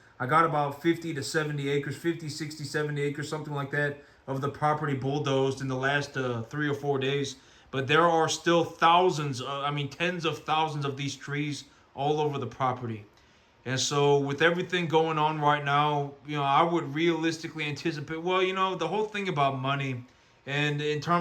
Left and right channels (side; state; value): both; identical; correlation 1.00